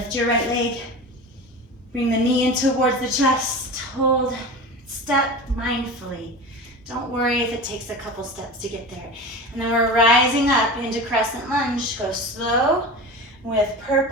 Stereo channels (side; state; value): both; normal; correlation 0.30